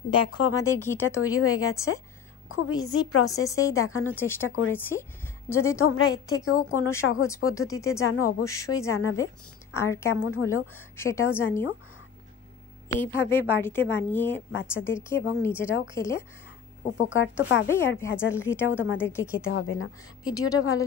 দেখো আমাদের ঘিটা তৈরি হয়ে গেছে। খুব ইজি প্রসেসেই দেখানোর চেষ্টা করেছি। যদি তোমরা এর থেকেও কোনো সহজ পদ্ধতিতে জানো অবশ্যই জানাবে, আর কেমন হলো সেটাও জানিও। এইভাবে বাড়িতে বানিয়ে বাচ্চাদেরকে এবং নিজেরাও খেলে উপকার তো পাবেই, আর ভেজাল ঘিটাও তোমাদেরকে খেতে হবে না। ভিডিওটা ভালো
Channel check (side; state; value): right; quieter; 7.5 dB